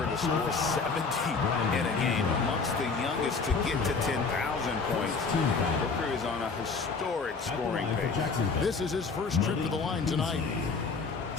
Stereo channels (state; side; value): quieter; right; 4.6 dB